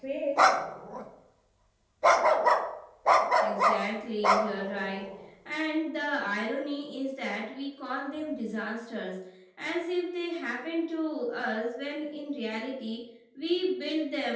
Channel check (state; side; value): identical; both; correlation 1.00